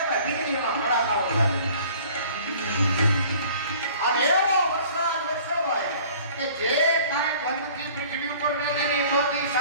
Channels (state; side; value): inverted; both; correlation -0.50